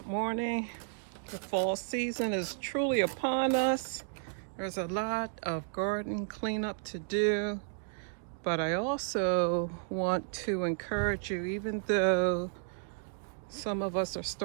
morning. The fall season is truly upon us. There's a lot of garden cleanup to do, but I also want to encourage you, even though some of us are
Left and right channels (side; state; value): left; silent; digital silence